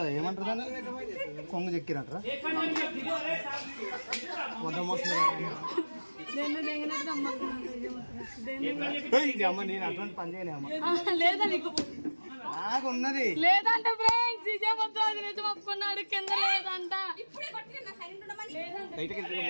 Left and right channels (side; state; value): both; inverted; correlation -1.00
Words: ఏమంటారు దాన్ని, కొంగు చెక్కిరంటారా? మొత్తం అమ్మ నేను అటువంటి పని చేయలే అమ్మ, లేదా నీకు నాకు ఉన్నది లేదంట ఫ్రెండ్స్, ఇదే మొత్తం అది నిజం ఒప్పుకున్నాడు, కింద లేదంట.